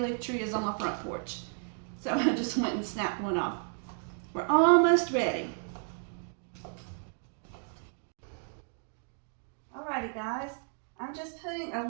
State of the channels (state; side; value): silent; left; 56 dB below the other